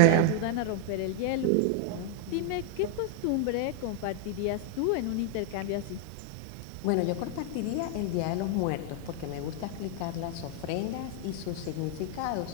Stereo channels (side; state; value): both; different; correlation 0.00